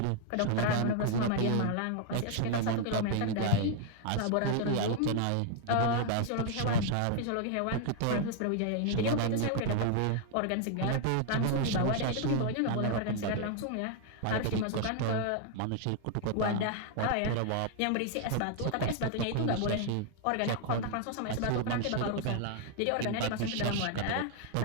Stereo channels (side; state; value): both; different; correlation 0.00